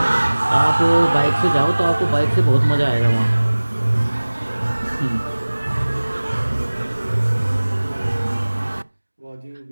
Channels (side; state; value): both; inverted; correlation -1.00